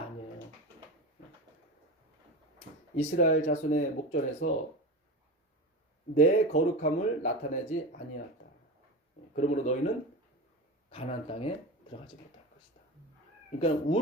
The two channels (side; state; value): both; normal; correlation 0.26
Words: 아니에요. 이스라엘 자손의 목전에서 내 거룩함을 나타내지 아니하였다. 그러므로 너희는 가나안 땅에 들어가지 못할 것이다. 그러니까